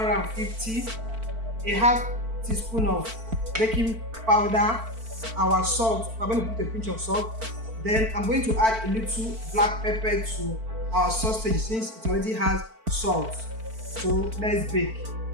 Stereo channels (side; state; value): left; late; 4.5 ms